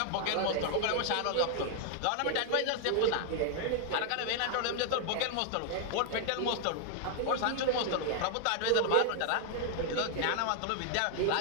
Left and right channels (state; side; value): different; both; correlation 0.00